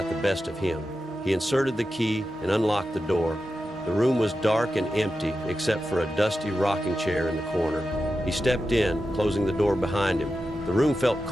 the best of him. He inserted the key and unlocked the door. The room was dark and empty, except for a dusty rocking chair in the corner. He stepped in, closing the door behind him. The room felt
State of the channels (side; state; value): both; normal; correlation 0.91